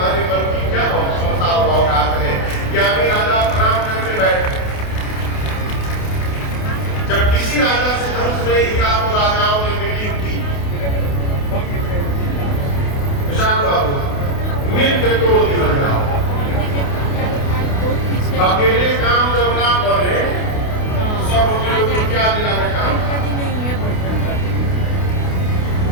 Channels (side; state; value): right; late; 28 ms